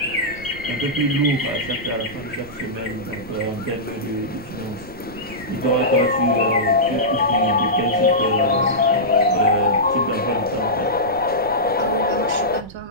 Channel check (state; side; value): noise; right; rumble, 17 dB below the sound